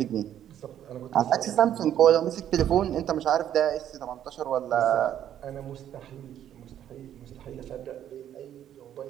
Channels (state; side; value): quieter; left; 10.7 dB